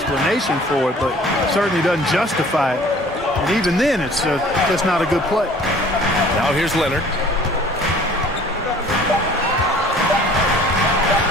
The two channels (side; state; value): both; normal; correlation 0.51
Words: for it, but certainly doesn't justify it. And even then, it's just not a good play. Now here's Leonard.